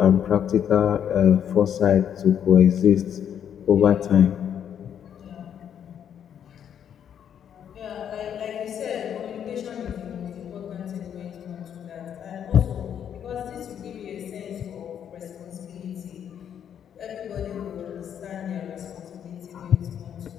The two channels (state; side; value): quieter; right; 8.9 dB